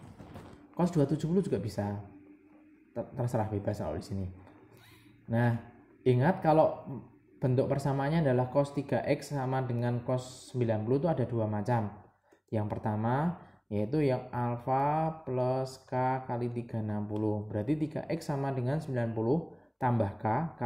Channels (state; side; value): identical; both; correlation 1.00